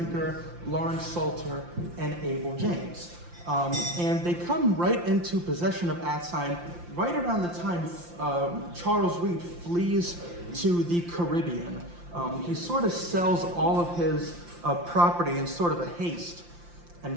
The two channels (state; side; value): late; left; 5.8 ms